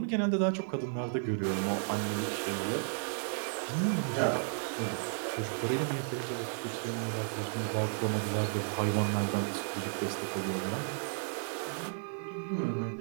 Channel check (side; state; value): left; silent; digital silence